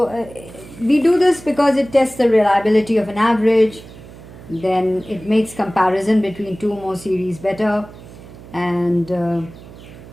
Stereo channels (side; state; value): right; noise; hum, 18 dB below the sound